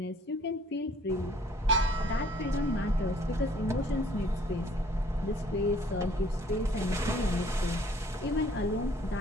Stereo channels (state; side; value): normal; both; correlation 0.58